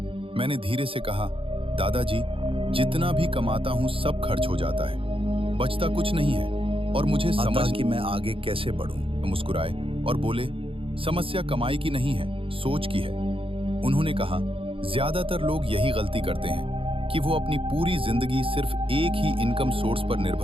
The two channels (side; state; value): left; late; 0.26 ms